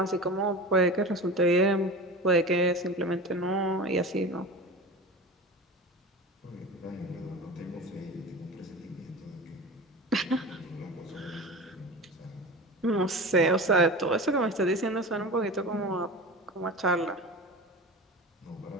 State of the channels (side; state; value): both; normal; correlation 0.31